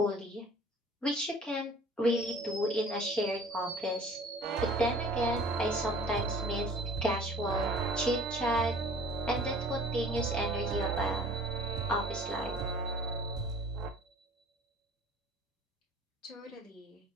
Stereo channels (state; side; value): normal; both; correlation 0.49